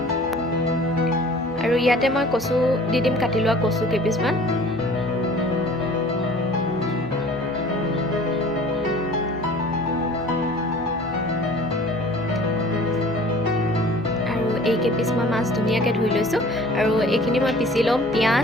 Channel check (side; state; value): both; normal; correlation 0.47